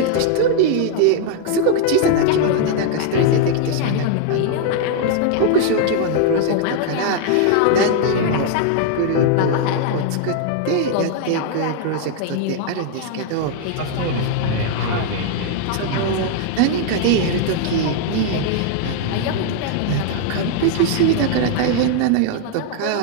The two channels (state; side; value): different; both; correlation 0.00